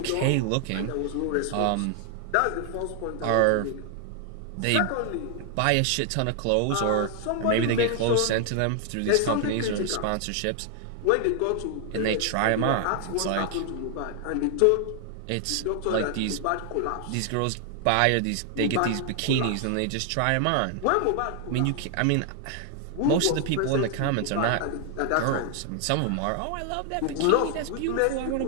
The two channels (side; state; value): both; different; correlation 0.00